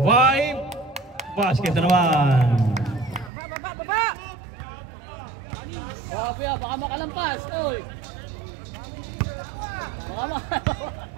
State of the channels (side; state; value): left; drops out; at 3.3 s